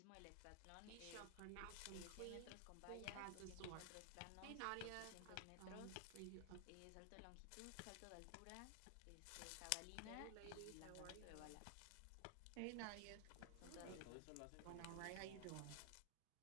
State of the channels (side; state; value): both; different; correlation 0.00